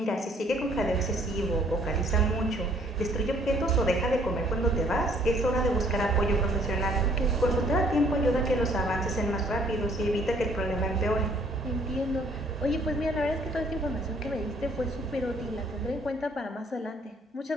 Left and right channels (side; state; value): both; normal; correlation 0.61